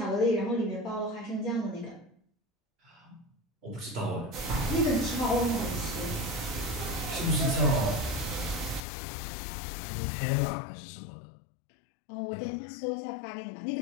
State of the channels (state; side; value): drops out; right; at 8.8 s